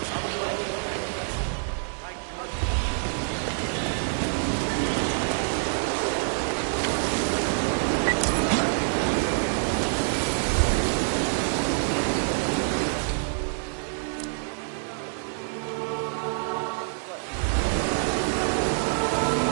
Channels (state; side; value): silent; left; digital silence